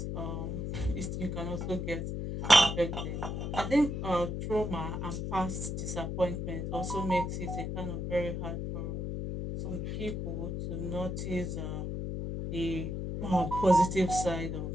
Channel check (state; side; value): noise; left; hum, 3 dB below the sound